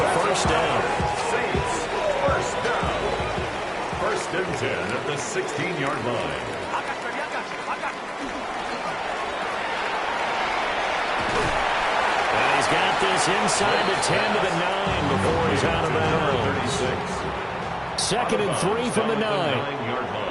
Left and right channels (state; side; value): identical; both; correlation 1.00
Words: first down. Saints first down. 1st and 10 at the 16-yard line. Got this inside the 10 to the 9 before he's out of bounds. 2nd and 3 from the 9. 9-yard